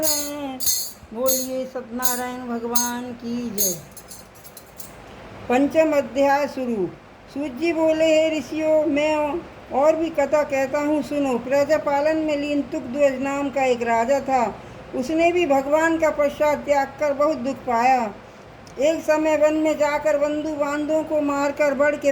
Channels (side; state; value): both; identical; correlation 1.00